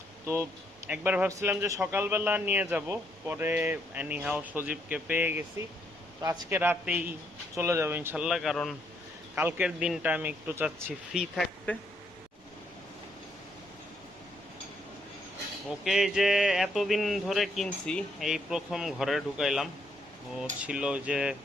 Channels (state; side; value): normal; both; correlation 0.73